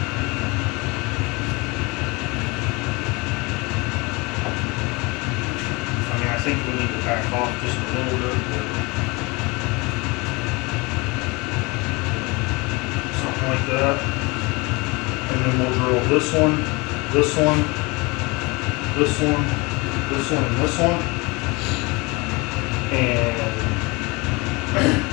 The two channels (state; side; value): quieter; right; 26.2 dB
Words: I think we need to back off just a little bit. Something like that. And then we'll drill this one, this one, this one, this one, and this one. And